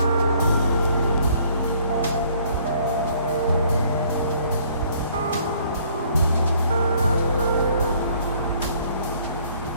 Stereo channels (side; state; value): both; inverted; correlation -0.61